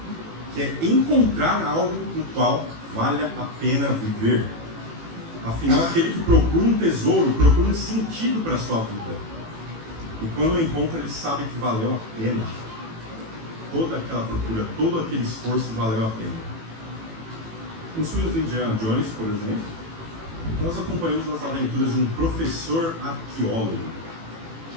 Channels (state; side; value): late; left; 18 ms